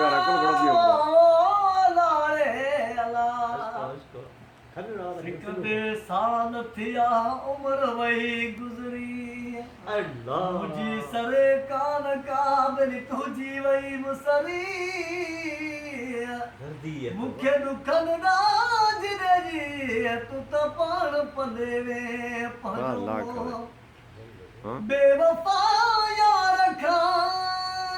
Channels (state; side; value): identical; both; correlation 1.00